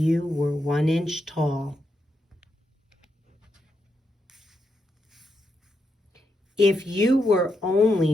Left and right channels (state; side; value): normal; both; correlation 0.83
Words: were 1 inch tall. If you were